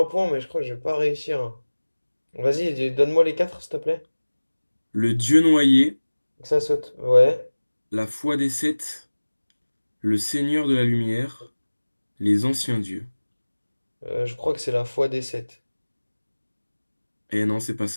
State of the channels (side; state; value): both; inverted; correlation -1.00